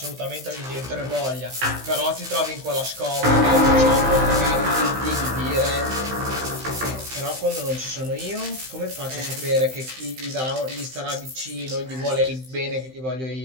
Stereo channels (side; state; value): left; late; 15 ms